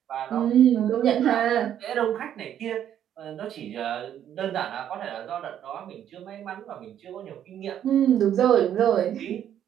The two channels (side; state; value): left; quieter; 10.2 dB